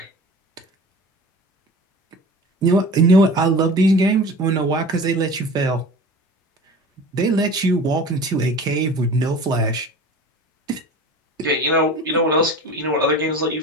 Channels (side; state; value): both; normal; correlation 0.38